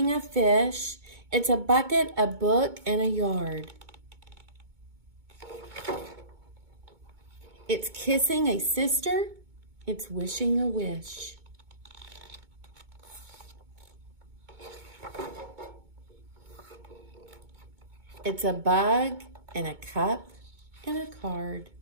a fish, it's a bucket, a book, and a yard. It's kissing a sister, it's wishing a wish. It's a bug and a cup and a card.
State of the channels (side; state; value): left; late; 2.2 ms